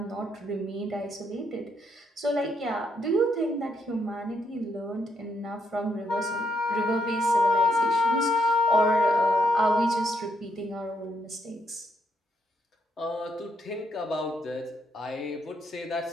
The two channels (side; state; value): both; normal; correlation 0.76